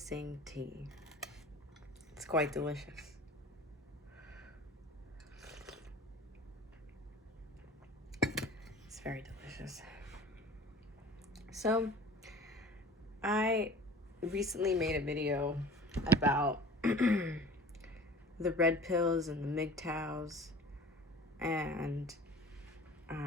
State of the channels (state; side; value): normal; both; correlation 0.43